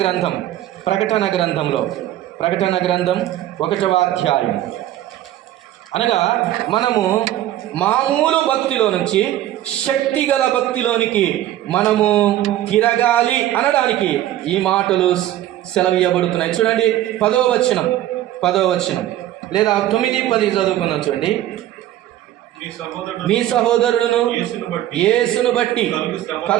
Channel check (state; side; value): quieter; left; 13.4 dB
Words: గ్రంథం 1వ అధ్యాయం అనగా మనము మామూలు భక్తిలో నుంచి శక్తిగల భక్తిలోనికి మనము తిరగాలి అనడానికి ఈ మాటలు సెలవీయబడుతున్నాయి. చూడండి 10వ వచనం లేదా 9-10 చదువుకుందాం. చూడండి, మీ సహోదరుడును యేసును బట్టి